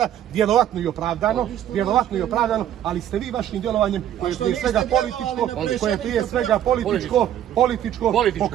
vjerovatno i opravdano, ali ste vi vašim djelovanjem, koje je prije svega političko,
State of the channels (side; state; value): left; quieter; 11.1 dB